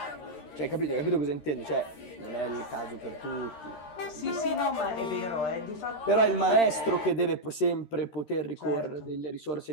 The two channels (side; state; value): right; late; 13 ms